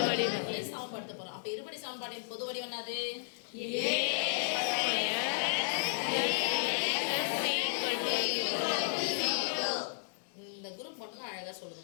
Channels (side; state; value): right; silent; digital silence